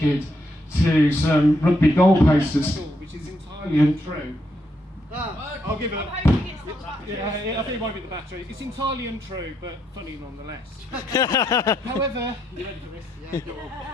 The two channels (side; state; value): both; normal; correlation 0.77